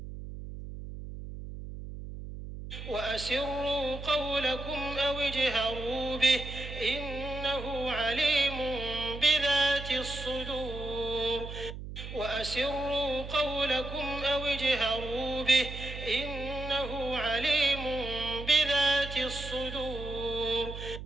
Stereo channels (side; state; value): right; noise; hum, 10 dB below the sound